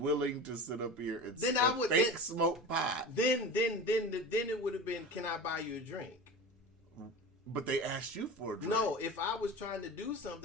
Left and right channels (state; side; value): normal; both; correlation 0.31